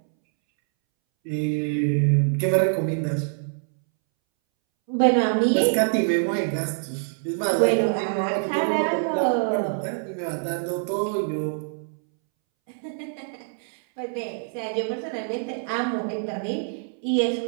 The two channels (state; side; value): silent; left; 62 dB below the other